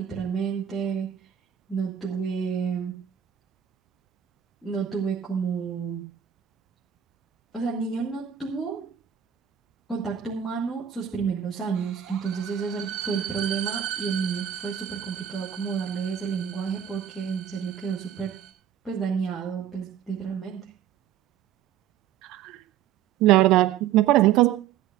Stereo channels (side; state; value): left; quieter; 9.5 dB